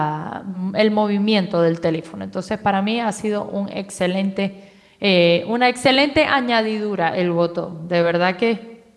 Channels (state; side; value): identical; both; correlation 1.00